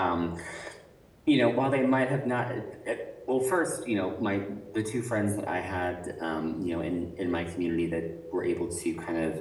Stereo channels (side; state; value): both; identical; correlation 1.00